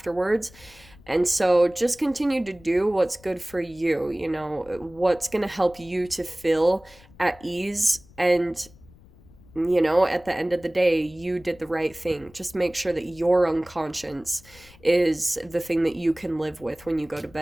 And so just continue to do what's good for you, what's going to help you to feel at ease. And at the end of the day, you did the right thing. Just make sure that your own conscience is the thing that you can live with when you go to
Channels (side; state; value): left; noise; rumble, 24 dB below the sound